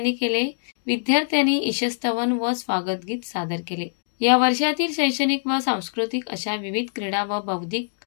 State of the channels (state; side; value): silent; right; digital silence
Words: केले। विद्यार्थ्यांनी ईशस्तवन व स्वागत गीत सादर केले। या वर्षातील शैक्षणिक व सांस्कृतिक अशा विविध क्रीडा व बौद्धिक